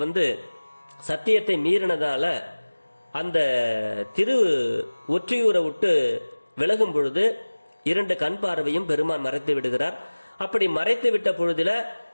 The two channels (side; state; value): both; inverted; correlation -1.00